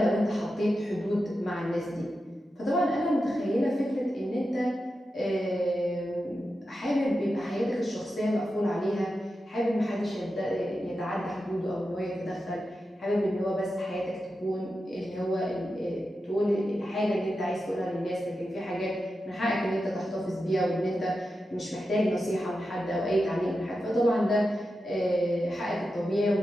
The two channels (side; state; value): both; normal; correlation 0.90